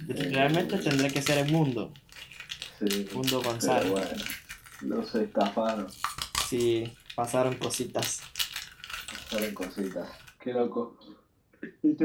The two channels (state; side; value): identical; both; correlation 1.00